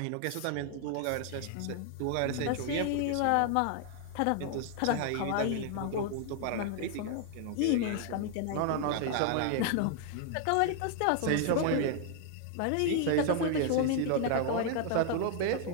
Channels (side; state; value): both; different; correlation 0.00